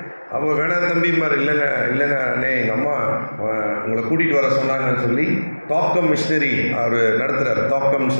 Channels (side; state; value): both; inverted; correlation -1.00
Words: அப்போ வேணாம் தம்பிமார், இல்லைங்க அண்ணே, எங்கள் அம்மா உங்களை கூட்டிகிட்டு வர சொன்னாங்கன்னு சொல்லி தாக்கம் மிஷினரி அவர் நடத்துகிறார். தாக்கம்னு